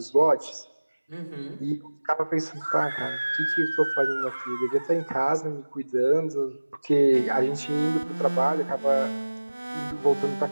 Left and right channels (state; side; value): inverted; both; correlation -1.00